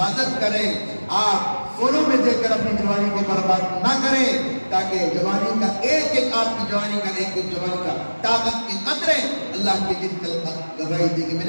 کریں، آپ فونوں میں دیکھ کر اپنی جوانی کو برباد نہ کریں، تاکہ جوانی کا ایک ایک آپ کی جوانی کا ایک ایک جوانی کا طاقت کے قطرے اللہ کے دن کل گواہی دے گی۔ میں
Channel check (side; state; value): both; inverted; correlation -1.00